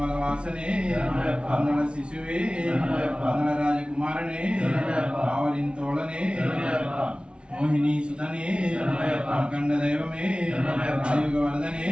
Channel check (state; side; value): late; left; 0.057 ms